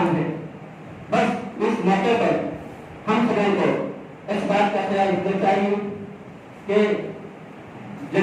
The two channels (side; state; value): both; identical; correlation 1.00